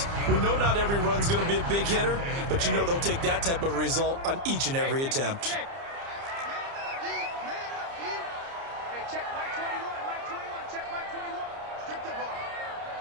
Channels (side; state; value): left; late; 30 ms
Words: We know not every run's going to be a big hitter, but you know they'll take that type of result on each and every attempt. check Mike 21, Mike 21, check Mike 21. Strip the ball.